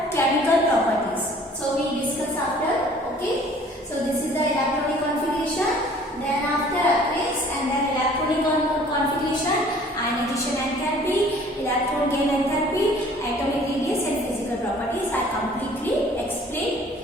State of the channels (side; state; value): both; normal; correlation 0.53